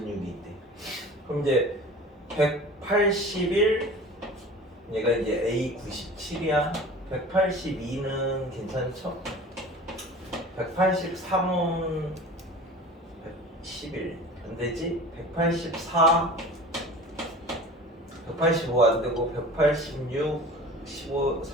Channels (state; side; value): normal; both; correlation 0.39